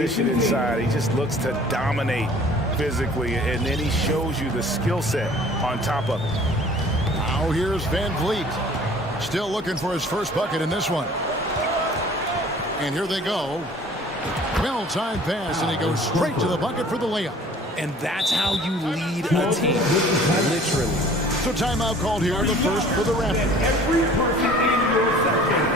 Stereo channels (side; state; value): both; normal; correlation 0.50